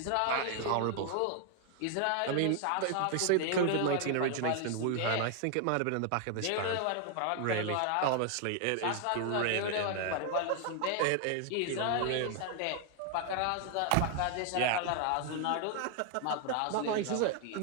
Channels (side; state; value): both; different; correlation 0.00